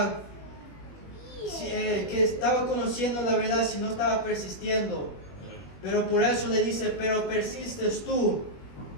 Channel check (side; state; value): right; late; 21 ms